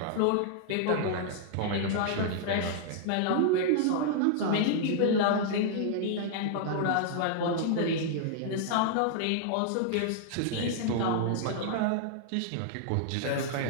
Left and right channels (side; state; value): both; different; correlation -0.01